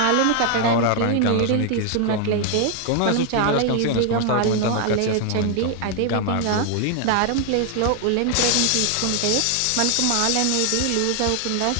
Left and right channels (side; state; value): both; different; correlation 0.00